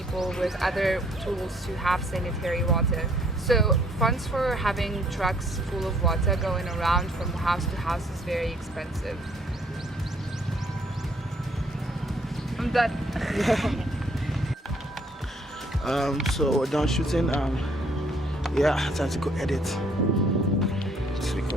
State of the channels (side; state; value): both; normal; correlation 0.63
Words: with other tools to have sanitary water. So funds for having trucks full of water going around from house to house is very expensive. I'm done. So we're done shooting. Yeah, time to go edit. Let's